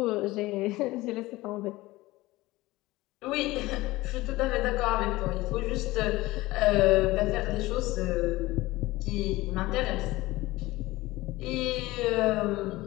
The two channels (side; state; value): right; quieter; 19.1 dB